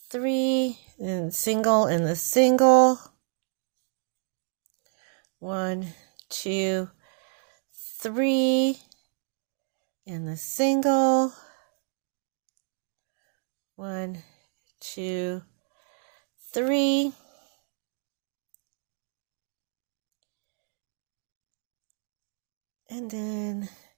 3, and single in the single, 1, 2, 3, and the single, 1, 2, 3, and then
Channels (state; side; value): silent; left; 59 dB below the other